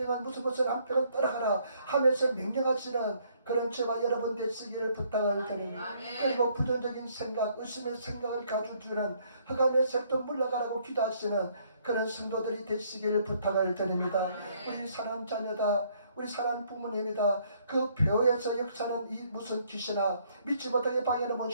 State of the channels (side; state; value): both; inverted; correlation -0.66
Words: 무슨 암병은 떠나가라 하면서 명령하시는 그런 저와 여러분 되시기를 부탁을 드립니다. 그리고 부정적인 생각, 의심의 생각을 가져주는 흑암의 색도 물러가라고 기도하시는 그런 성도들이 되시기를 부탁을 드립니다. 우리 사랑하는 자녀다. 우리 사랑하는 부모님이다. 그 벼에서 역사는 이 무슨 귀신아 믿지 못하게 방해하는